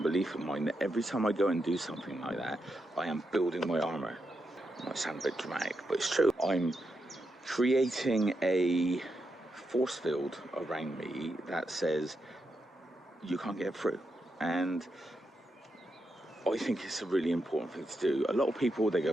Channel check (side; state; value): both; normal; correlation 0.84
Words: belief of mine, that every time I go and do something like that, I am building my armour. It might sound a bit dramatic, but it's true. I'm creating a force field around me that says you can't get through, and I think it's a really important thing to do. A lot of people, they go,